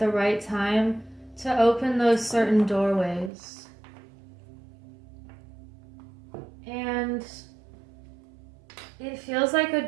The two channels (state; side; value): drops out; left; at 3.3 s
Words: right time to open those certain doorways. And it feels like a